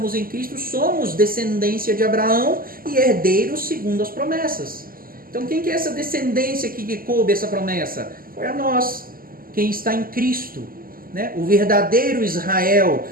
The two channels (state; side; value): late; left; 0.42 ms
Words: em Cristo somos descendência de Abraão e herdeiros segundo as promessas. Então quem que é essa descendência que coube essa promessa? Foi a nós, quem está em Cristo. Né? O verdadeiro Israel,